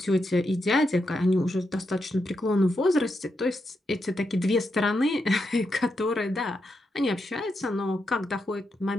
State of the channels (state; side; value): normal; both; correlation 0.84